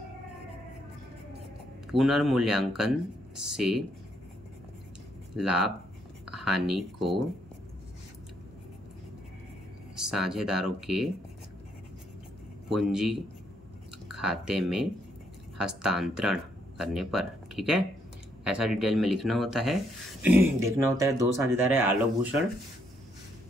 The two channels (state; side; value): normal; both; correlation 0.73